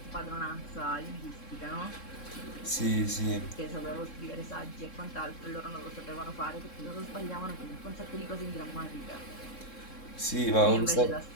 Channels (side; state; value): right; late; 3.7 ms